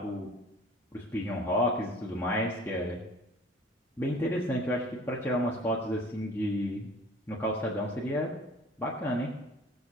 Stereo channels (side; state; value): both; normal; correlation 0.47